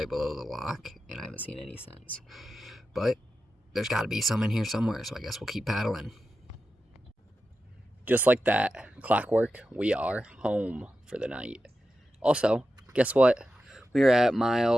below the lock, and I haven't seen any since. But there's got to be some in here somewhere, so I guess we'll keep paddling. Just like that, clockwork, we are home for the night. Also, guess what? We are at mile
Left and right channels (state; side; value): normal; both; correlation 0.91